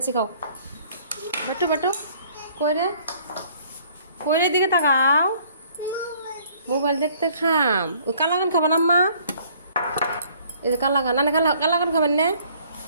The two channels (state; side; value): inverted; both; correlation -0.59